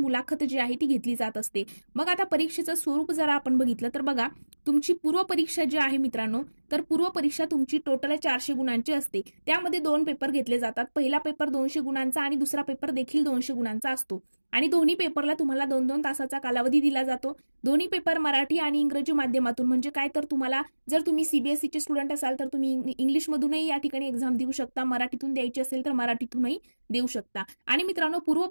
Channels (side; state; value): both; inverted; correlation -1.00